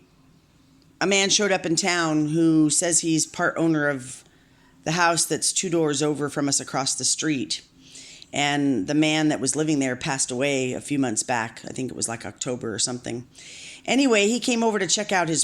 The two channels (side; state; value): both; identical; correlation 1.00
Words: a man showed up in town who says he's part owner of the house that's two doors over from us across the street. And the man that was living there passed away a few months back. I think it was like October or something. Anyway, he came over to check out